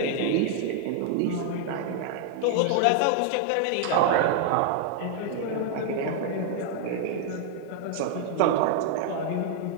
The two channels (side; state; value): both; different; correlation 0.00